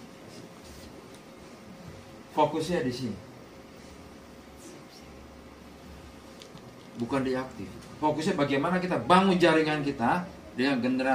fokusnya di sini. Bukan di aktif. Fokusnya bagaimana kita bangun jaringan kita dengan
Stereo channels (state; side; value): identical; both; correlation 1.00